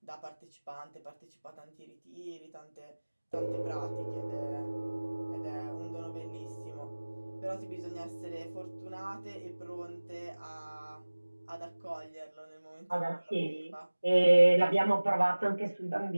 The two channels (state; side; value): inverted; both; correlation -1.00